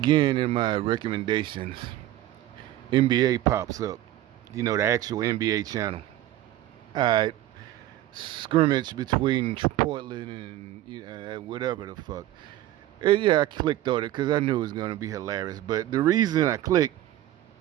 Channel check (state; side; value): quieter; left; 14.2 dB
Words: in my recommendations, NBA pops up. You know, the actual NBA channel. Alright, scrimmage between Portland and whatever the fuck. And yeah, I clicked on it because I knew it was going to be hilarious. But the reason I clicked,